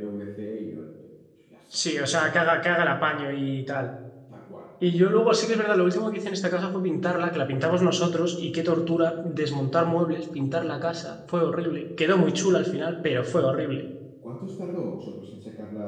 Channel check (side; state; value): both; identical; correlation 1.00